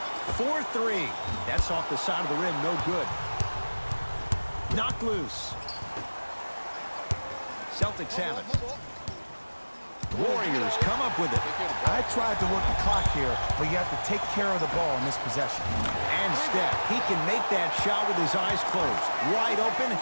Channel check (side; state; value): both; inverted; correlation -1.00